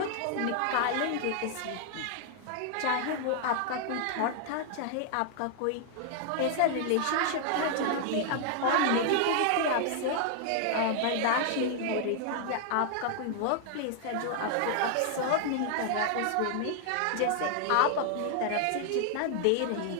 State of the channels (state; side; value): different; both; correlation 0.00